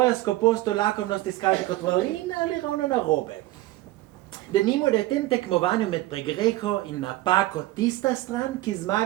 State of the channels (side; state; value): left; quieter; 17.3 dB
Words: skopostjo lakomnost izkaže kot vrlina ali ravno narobe. Denimo, da je v tem tekmovanju med pregreho in napako tista stran, ki